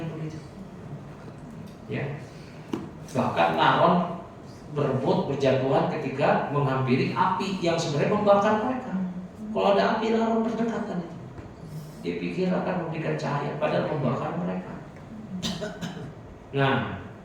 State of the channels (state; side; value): identical; both; correlation 1.00